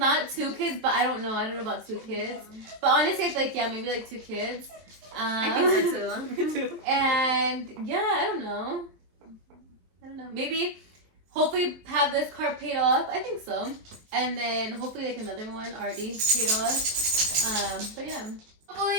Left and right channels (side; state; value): left; late; 23 ms